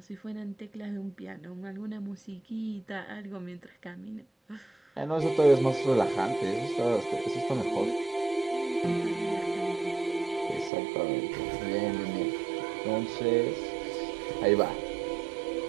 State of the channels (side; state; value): left; drops out; at 10.7 s